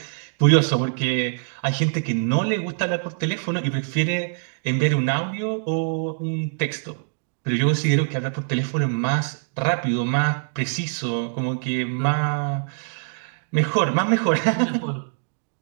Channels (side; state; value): left; silent; digital silence